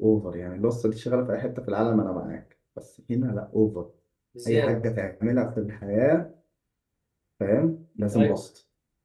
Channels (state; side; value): identical; both; correlation 1.00